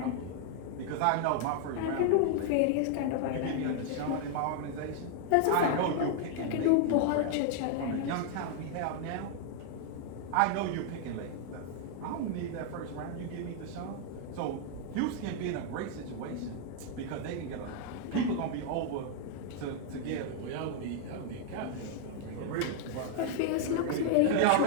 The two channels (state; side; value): different; both; correlation 0.00